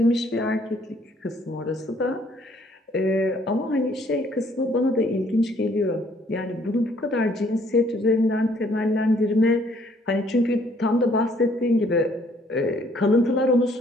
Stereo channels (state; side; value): normal; both; correlation 0.63